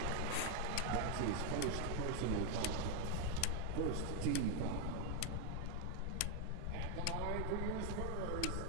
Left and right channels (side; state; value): both; different; correlation 0.01